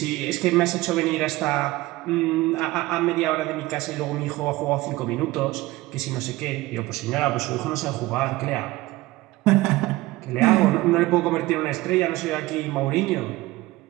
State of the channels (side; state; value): left; quieter; 19.0 dB